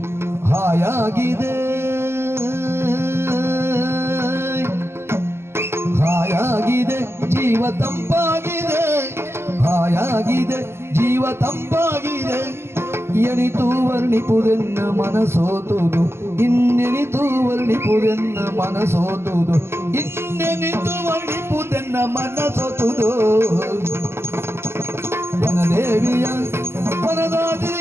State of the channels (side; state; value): left; late; 0.12 ms